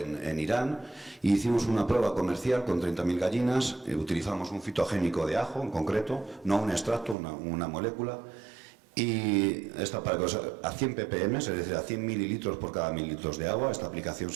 Irán. Hicimos una prueba comercial con 30.000 gallinas, utilizamos un fitogénico de ajo en concreto, no un extracto, una molécula, y esta para a 100 ppm, es decir, a 100 mililitros por cada 1.000 litros de agua. Esta aplicación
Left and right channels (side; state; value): left; drops out; at 7.2 s